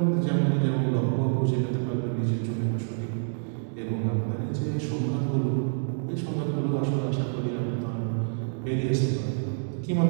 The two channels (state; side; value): silent; left; 60 dB below the other